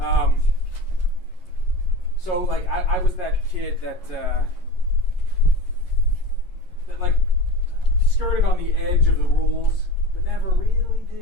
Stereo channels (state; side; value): late; right; 11 ms